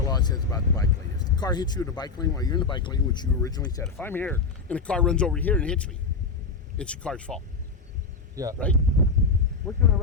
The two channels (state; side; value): quieter; right; 4.4 dB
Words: law says about the bike lane. If the car hits you in the bike lane while you're in the bike lane, which you originally said, if I'm here and a car runs over here and hits me, it's the car's fault. Yeah. Right? Where can I